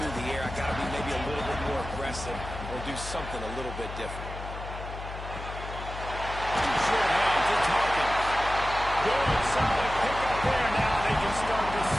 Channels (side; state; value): left; noise; hum, 9 dB below the sound